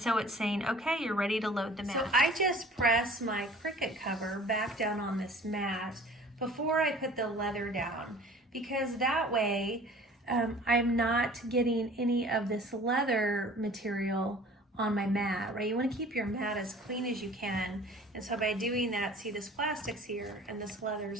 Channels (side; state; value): both; normal; correlation 0.47